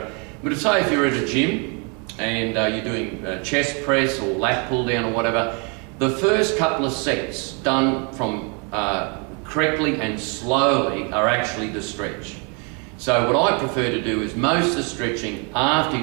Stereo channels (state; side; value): quieter; left; 34.9 dB